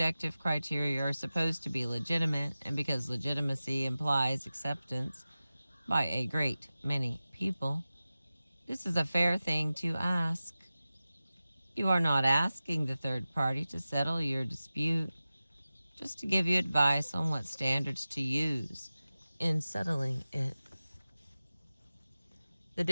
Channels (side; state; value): both; inverted; correlation -0.95